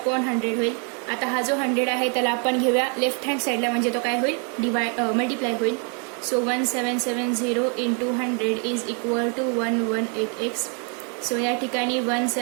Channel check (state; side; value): quieter; left; 39.7 dB